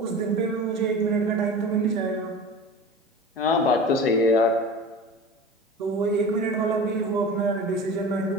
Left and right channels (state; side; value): normal; both; correlation 0.35